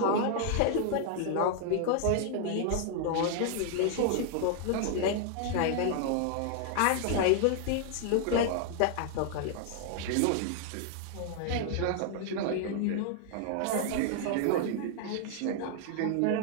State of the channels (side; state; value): both; different; correlation 0.00